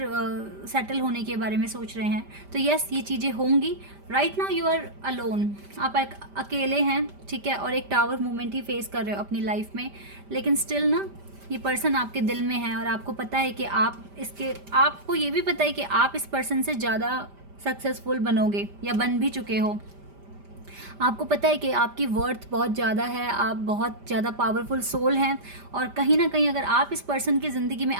सेटल होने के बारे में सोच रहे हैं। तो यस, ये चीज़ें होंगी। Right now you are alone, आप अकेले हैं, ठीक है, और एक टावर मूवमेंट ही फेस कर रहे हो अपनी लाइफ में, लेकिन स्टिल ना ये पर्सन आपके दिल में है, और आपको पता है कि आपको ये भी पता है कि आप इस पर्सन से ज़्यादा सक्सेसफुल बनोगे या बन भी चुके हो। आपको पता है कि आपकी वर्थ बहुत ज़्यादा है, आप बहुत ज़्यादा पावरफुल सोल हैं, और कहीं ना कहीं अगर आप इस पर्सन की ज़िंदगी में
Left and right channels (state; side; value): late; left; 5.1 ms